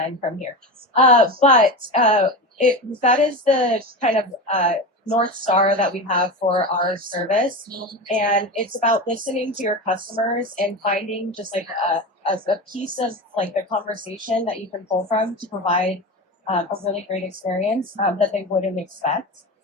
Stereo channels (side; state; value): both; normal; correlation 0.24